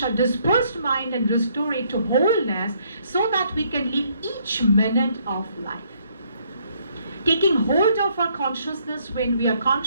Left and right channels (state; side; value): inverted; both; correlation -0.68